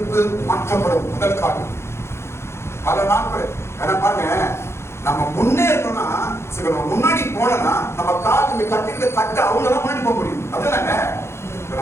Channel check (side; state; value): right; late; 0.13 ms